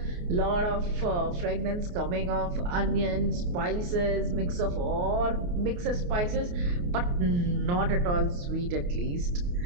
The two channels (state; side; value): late; left; 28 ms